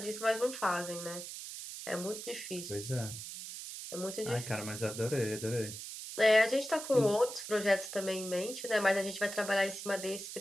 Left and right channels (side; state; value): right; noise; hiss, 9 dB below the sound